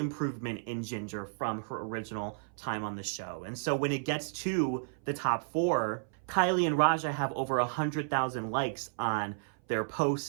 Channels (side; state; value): left; silent; 56 dB below the other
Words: in Ginger from her original time on the show. And so when it gets to the top four, Kylie and Raja have over 100,000 likes on their